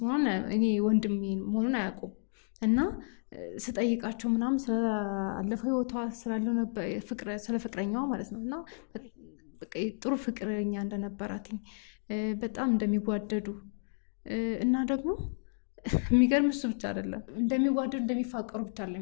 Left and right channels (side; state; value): right; silent; digital silence